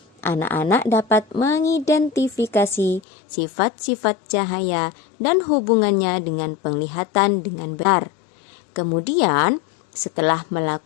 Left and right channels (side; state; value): right; drops out; at 3.0 s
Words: anak-anak dapat mengidentifikasi sifat-sifat cahaya dan hubungannya dengan penglihatan dengan benar. Kemudian, setelah